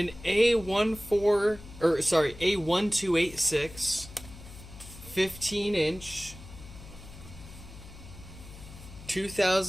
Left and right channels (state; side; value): noise; left; hum, 16 dB below the sound